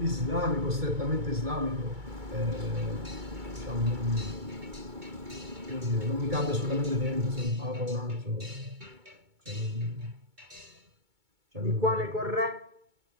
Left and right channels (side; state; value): left; late; 2.2 ms